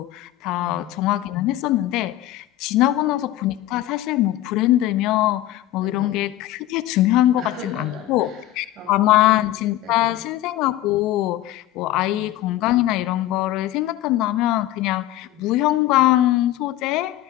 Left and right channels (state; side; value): quieter; right; 14.5 dB